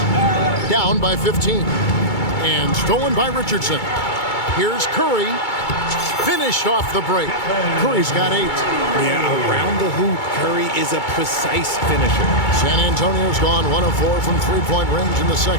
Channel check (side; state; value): right; late; 2.3 ms